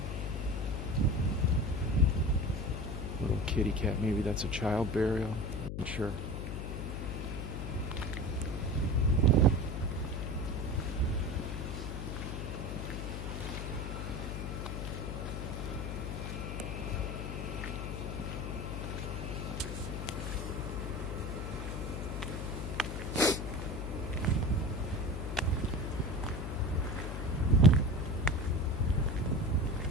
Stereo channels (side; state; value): left; noise; hum, 4 dB below the sound